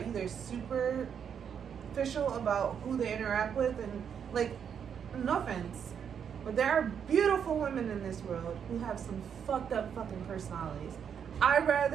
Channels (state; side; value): quieter; left; 7.7 dB